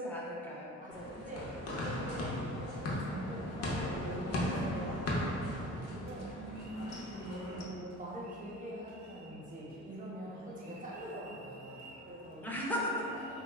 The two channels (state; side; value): normal; both; correlation 0.39